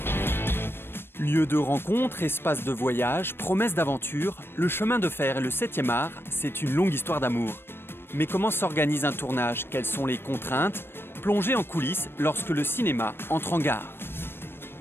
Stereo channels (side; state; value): right; late; 0.11 ms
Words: Lieu de rencontre, espace de voyage, promesse d'aventure, le chemin de fer et le 7e art, c'est une longue histoire d'amour. Mais comment s'organise un tournage? Quelles sont les contraintes? Plongez en coulisses lorsque le cinéma entre en gare.